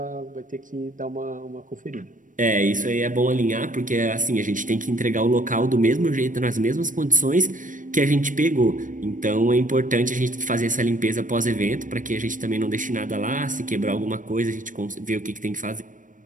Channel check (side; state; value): left; late; 0.38 ms